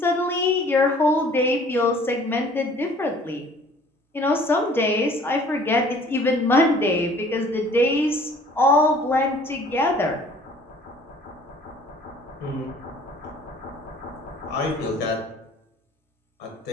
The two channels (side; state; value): both; normal; correlation 0.53